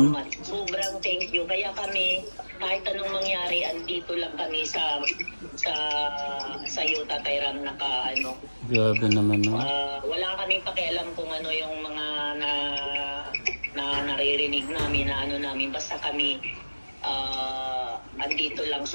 Salamat. Sobrang thank you. Kaya kami, kahit anong mangyari, andito lang kami sa iyo, Tatay Ram, Grabe naman, no? wala kaming pakialam kung yung mga naririnig namin namin. Basta kami andito lang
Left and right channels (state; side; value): inverted; both; correlation -1.00